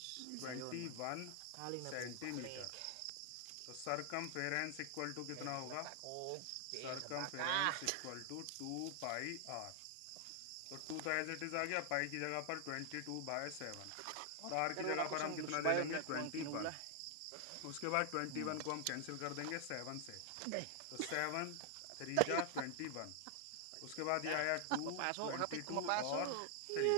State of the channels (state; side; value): different; both; correlation 0.00